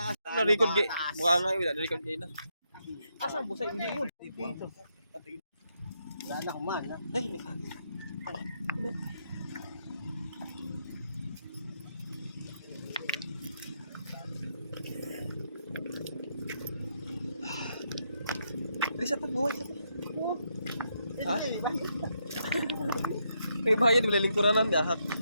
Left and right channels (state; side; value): inverted; both; correlation -0.79